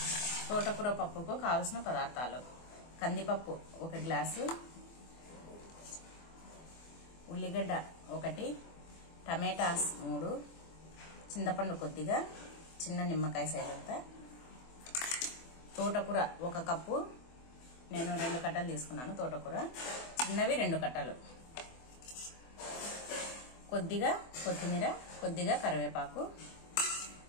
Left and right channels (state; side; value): late; right; 24 ms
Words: పప్పుకు కావాల్సిన పదార్థాలు: కందిపప్పు 1 గ్లాసు, ఉల్లిగడ్డ 1, టమాటాస్ 3, చింతపండు కొద్దిగా, చిన్న నిమ్మకాయ సైజ్ అంతా, తోటకూర 1 కప్పు, నేను 2 కట్టలు తీసుకున్నాను. తోటకూర చిన్నవి 2 కట్టలు, కొద్దిగా కొత్తిమీర, కొద్దిగా కరివేపాకు,